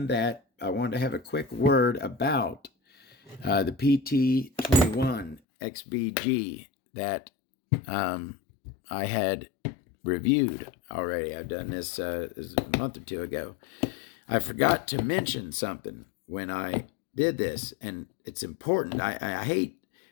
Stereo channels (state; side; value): drops out; right; at 5.4 s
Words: that. I wanted to have a quick word about the PT21 XBG that I had reviewed already. I've done this a month or two ago. I forgot to mention something when I did this, and it's important. I hate